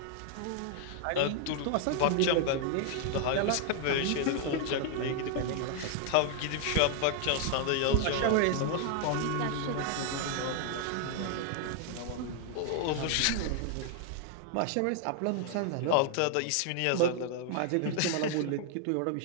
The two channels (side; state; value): both; different; correlation 0.00